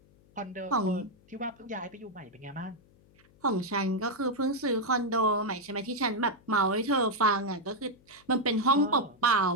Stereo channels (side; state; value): left; noise; hum, 29 dB below the sound